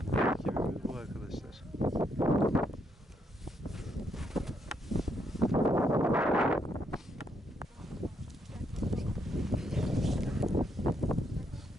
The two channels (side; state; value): both; normal; correlation 0.76